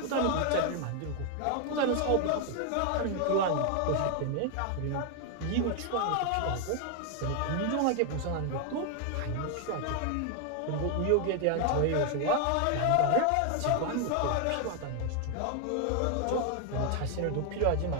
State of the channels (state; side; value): different; both; correlation 0.00